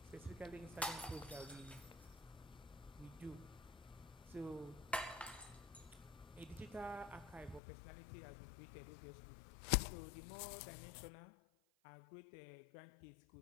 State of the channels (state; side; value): drops out; right; at 7.6 s